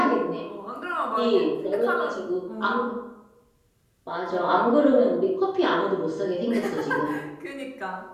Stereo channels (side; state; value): both; identical; correlation 1.00